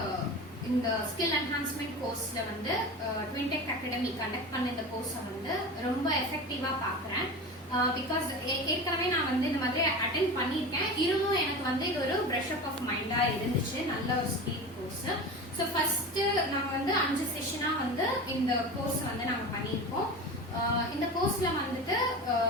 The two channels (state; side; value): normal; both; correlation 0.30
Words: இந்த skill enhancement கோர்ஸ்ல வந்து ட்வின்டெக் அகாடமி கண்டக்ட் பண்ண இந்த கோர்ஸை வந்து ரொம்ப எஃபெக்டிவா பாக்குறேன். பிகாஸ் ஏற்கனவே நான் வந்து இந்த மாதிரி அட்டென்ட் பண்ணியிருக்கேன். இருந்தும் எனக்கு வந்து இது ஒரு ப்ரஷ் அப் ஆஃப் மைண்டா இருந்துச்சு. நல்ல ஒரு ஸ்கில் கோர்ஸ். ஸோ ஃபர்ஸ்ட் நம்ம வந்து 5 செஷனா வந்து இந்த கோர்ஸ் வந்து நாங்க பண்ணியிருக்கோம். இந்த கோர்ஸ்ல வந்துட்டு